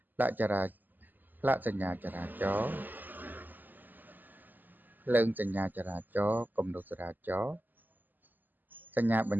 ផ្លាកសញ្ញាចរាចរណ៍ភ្លើងសញ្ញាចរាចរណ៍គំនូសចរាចរណ៍សញ្ញាបញ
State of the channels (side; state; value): left; late; 0.087 ms